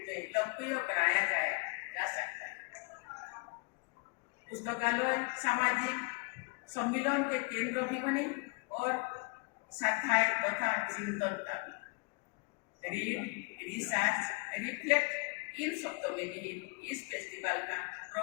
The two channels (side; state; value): right; quieter; 30.5 dB